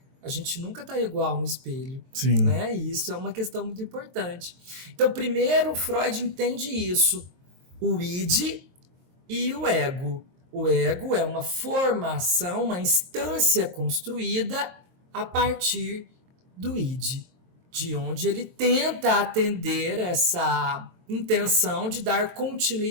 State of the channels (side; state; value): left; late; 23 ms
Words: A gente nunca está igual no espelho. Sim. Né? E isso é uma questão muito importante. Então, primeiro, Freud entende isso. O id e o ego. O ego é uma formação, uma instância construída a partir do id, de onde ele tenta atender essa intenção de dar